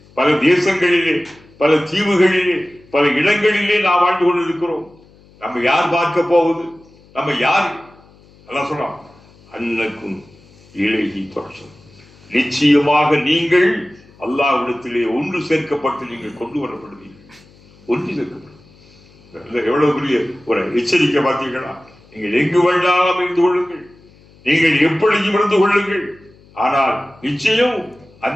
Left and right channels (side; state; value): left; noise; hum, 27 dB below the sound